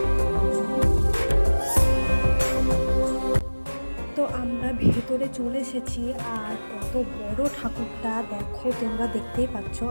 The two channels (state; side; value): inverted; both; correlation -1.00